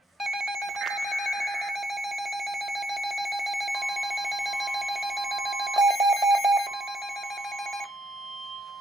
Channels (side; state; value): both; normal; correlation 0.72